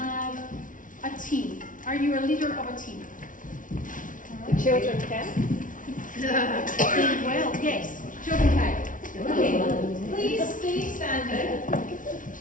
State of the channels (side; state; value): right; late; 0.38 ms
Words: a team. Are you a leader of a team? The children can? Well, yes, children can. Okay, please stay standing.